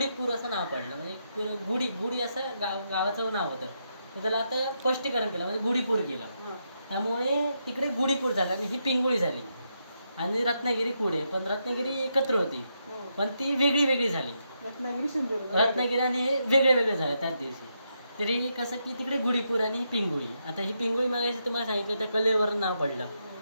असं नाव पडलं म्हणजे गुढी असं गावाचं नाव होतं. तर त्याला आता स्पष्टीकरण केलं म्हणजे गुढीपूर केलं. त्यामुळे तिकडे गुढीपूर झालं आणि ही पिंगुळी झाली आणि रत्नागिरी पुढे. पण रत्नागिरी एकत्र होती पण ती वेगळी झाली. रत्नागिरी आणि हे वेगळे झाले त्याच दिवशी. तरी कसं की तिकडे गुढीपूर आणि ही पिंगुळी. आता ही पिंगुळी मागायची तुम्हाला सांगितलं त्या कलेवरून नाव पडलं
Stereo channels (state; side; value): inverted; both; correlation -0.82